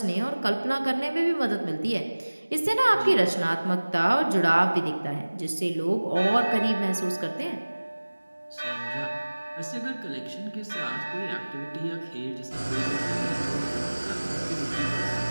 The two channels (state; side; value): inverted; both; correlation -1.00